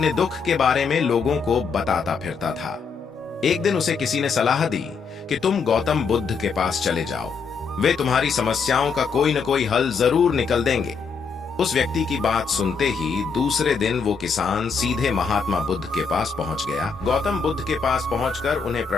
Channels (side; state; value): right; quieter; 5.4 dB